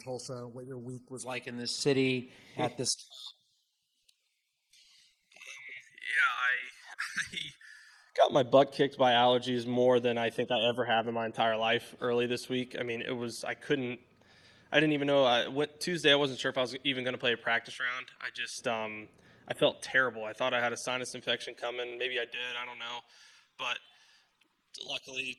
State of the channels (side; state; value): both; identical; correlation 1.00